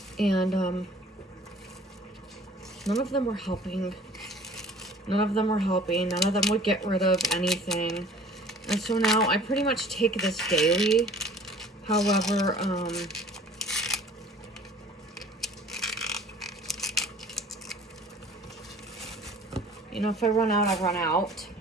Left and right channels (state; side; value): normal; both; correlation 0.50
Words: And, none of them were helping. None of them were helping. None of them would get rid of anything. And so now I pretty much take this daily. However, you know, if I run out, I run out.